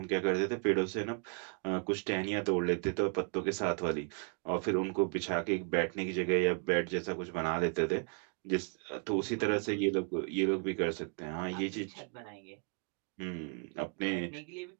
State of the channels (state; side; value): quieter; left; 39.2 dB